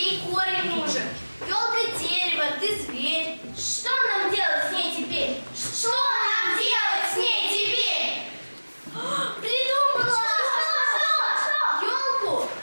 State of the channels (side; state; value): both; inverted; correlation -1.00